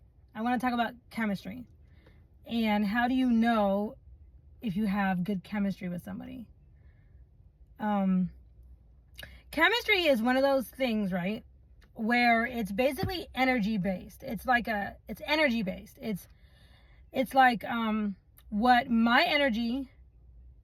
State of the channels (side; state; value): both; identical; correlation 1.00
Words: I want to talk about chemistry. And how do you know if you have good chemistry with somebody? Um, Chemistry is one of those things, right? Where it's basically energy based. It's energy based. It's like what my energy